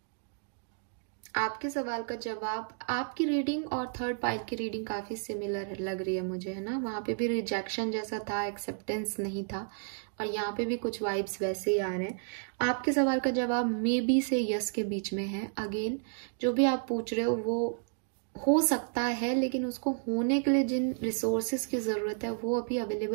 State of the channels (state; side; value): silent; left; digital silence